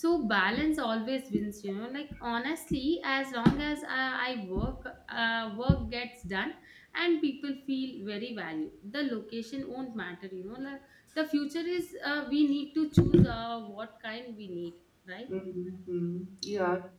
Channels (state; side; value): identical; both; correlation 1.00